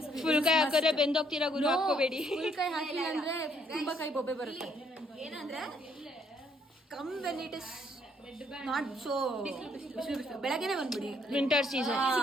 Full ಕೈ ಹಾಕಿದ್ರೆ ಬೆಂದೋಗ್ತೀರಾ ಗುರು, ಹಾಕೋಬೇಡಿ. ಫುಲ್ ಕೈ ಹಾಕಿಲ್ಲ ಅಂದ್ರೆ ತುಂಬಾ ಕೈ ಬೊಬ್ಬೆ ಬರುತ್ತೆ. ಏನಂದ್ರೆ come when it is not so ಬೆಳಗ್ಗೆನೆ ಬಂದ್ಬಿಡಿ. Winter season.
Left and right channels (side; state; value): both; normal; correlation 0.68